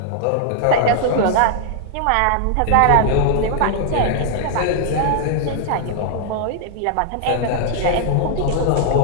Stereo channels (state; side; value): different; both; correlation -0.01